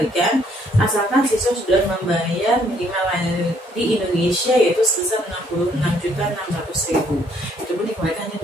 asalkan siswa sudah membayar minimal di Indonesia, yaitu sebesar 66.600.000. Itu pun dikembalikan hanya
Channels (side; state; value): both; normal; correlation 0.66